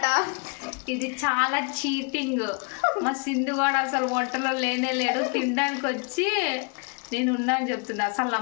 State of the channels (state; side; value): quieter; right; 34.9 dB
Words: ఇది చాలా చీటింగ్. మా సింధు కూడా అసలు వంటలో లేనే లేడు, తినడానికి వచ్చి నేను ఉన్నా అని చెప్తున్నా. అసలు